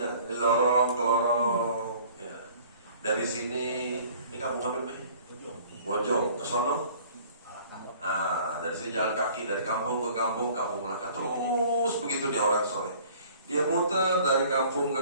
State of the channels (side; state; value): both; inverted; correlation -0.52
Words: di lorong ke lorong. Ya. Dari sini, ini kampung apa nih? Bojong, ke sono. Nah, dari sini jalan kaki dari kampung ke kampung, kampung Melaka, terus begitu dia orang soleh. Dia muter dari kampung